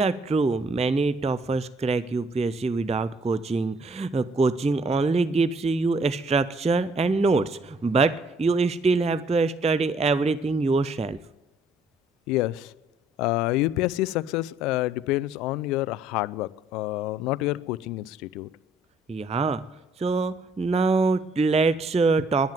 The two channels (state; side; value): normal; both; correlation 0.63